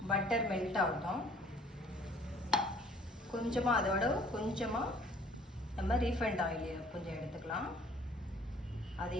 பட்டர் மெல்ட் ஆகட்டும். கொஞ்சமாக அதோட கொஞ்சமாக நம்ம ரீஃபைண்ட் ஆயில் கொஞ்சம் எடுத்துக்கலாம்.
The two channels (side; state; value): both; normal; correlation 0.56